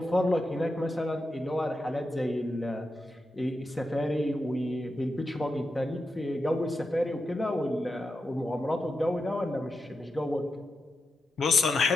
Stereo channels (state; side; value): normal; both; correlation 0.88